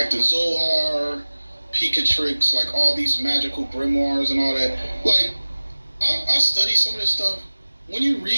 the Zohar, Pikatrix, like all these magical grimoires and all that. Like, I study some of this stuff. When you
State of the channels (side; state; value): both; inverted; correlation -1.00